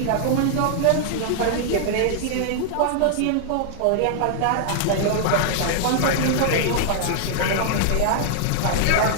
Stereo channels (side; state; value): both; different; correlation -0.01